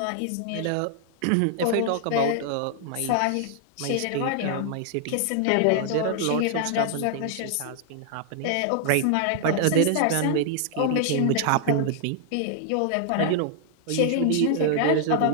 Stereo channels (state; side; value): different; both; correlation -0.01